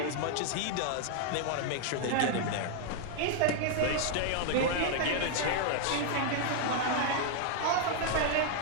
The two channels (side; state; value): both; different; correlation 0.00